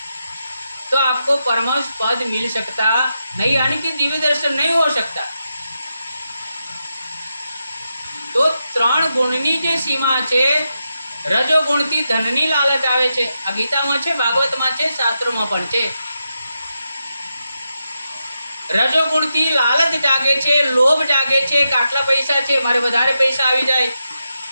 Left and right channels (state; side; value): inverted; both; correlation -0.86